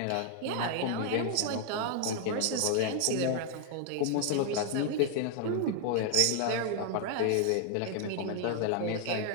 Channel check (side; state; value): both; different; correlation 0.00